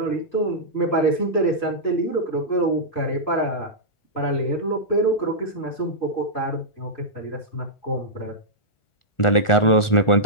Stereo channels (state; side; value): late; right; 1.4 ms